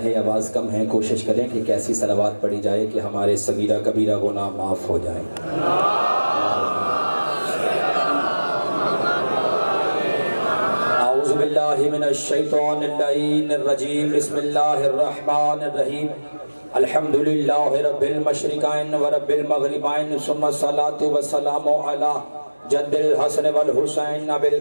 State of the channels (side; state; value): both; inverted; correlation -1.00